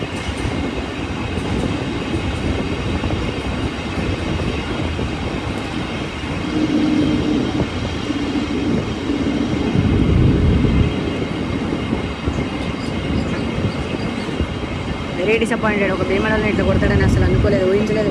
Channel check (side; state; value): both; identical; correlation 1.00